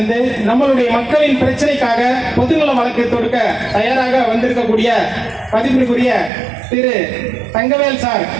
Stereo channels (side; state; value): left; drops out; at 6.3 s